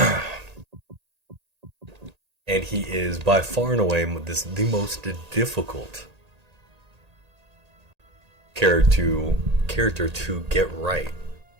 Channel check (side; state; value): left; late; 1.8 ms